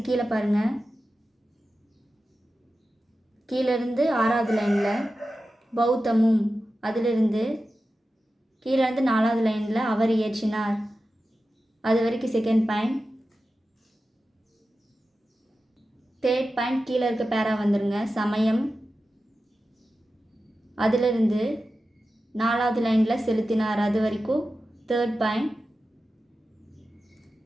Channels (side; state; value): both; normal; correlation 0.93